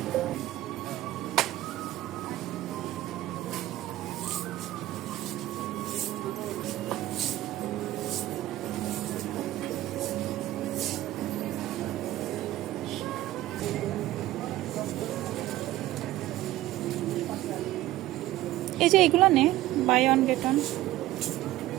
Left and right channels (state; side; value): quieter; left; 15.5 dB